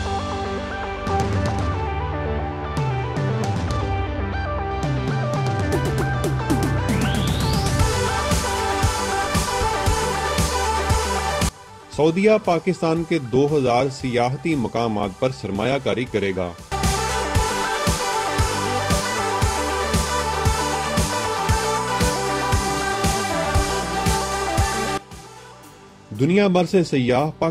सऊदीया पाकिस्तान के 2000 सियाहती मकामात पर सरमायाकारी करेगा। दुनिया भर से सयाह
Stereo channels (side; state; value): both; identical; correlation 1.00